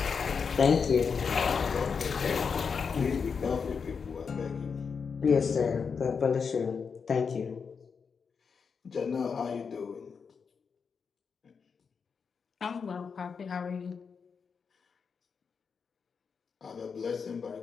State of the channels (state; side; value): quieter; right; 5.8 dB